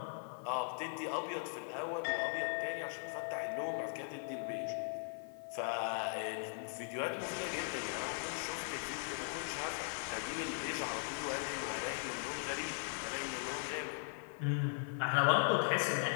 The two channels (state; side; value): silent; right; 52 dB below the other